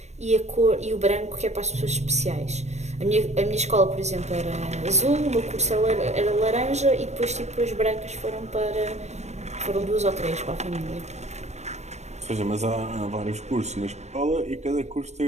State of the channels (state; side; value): late; left; 0.32 ms